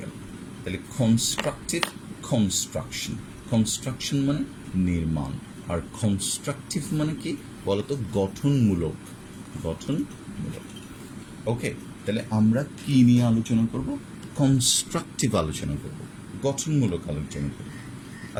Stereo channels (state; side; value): identical; both; correlation 1.00